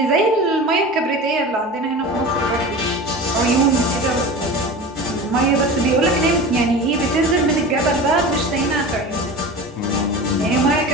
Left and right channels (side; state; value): both; normal; correlation 0.32